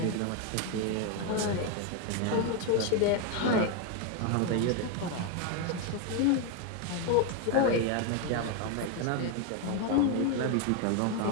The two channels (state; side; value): different; both; correlation 0.01